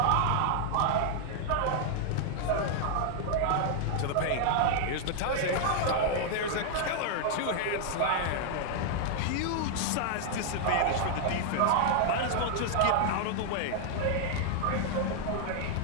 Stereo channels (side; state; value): both; different; correlation 0.00